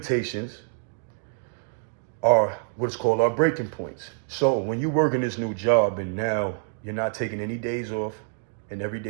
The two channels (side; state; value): left; silent; digital silence